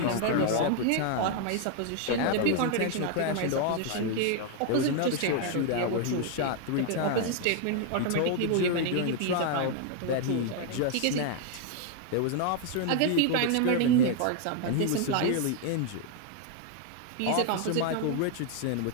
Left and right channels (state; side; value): different; both; correlation 0.00